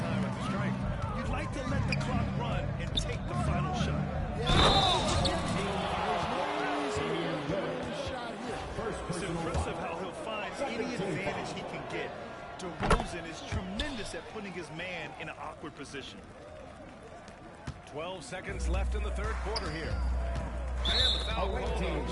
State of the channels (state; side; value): identical; both; correlation 1.00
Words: at the strike. You'd like to let the clock run and take the final shot. It's impressive how he'll find any advantage he can get. DeRozan is tremendous at putting his man in an awkward position. 12 seconds left in the third quarter here. And the foul called on